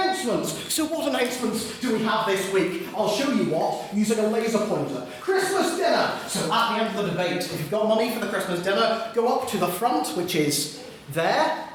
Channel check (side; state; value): both; identical; correlation 1.00